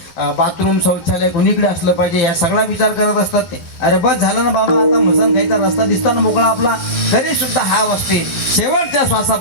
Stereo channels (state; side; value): late; right; 11 ms